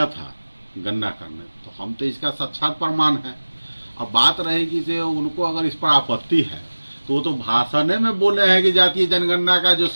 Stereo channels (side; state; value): both; inverted; correlation -1.00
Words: था गणना करने, तो हम तो इसका साक्षात प्रमाण है। अब बात रहेगी कि उनको अगर इस पर आपत्ति है तो वो तो भाषण में बोले हैं कि जातीय जनगणना का जो